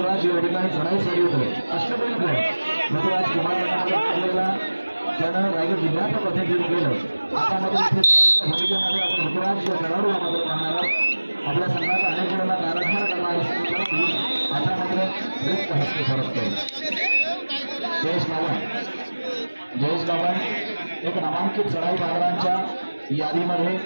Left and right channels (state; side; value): inverted; both; correlation -1.00